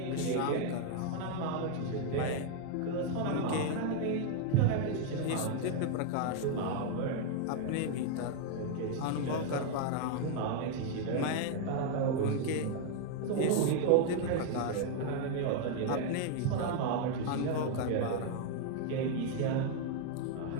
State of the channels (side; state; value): both; different; correlation 0.00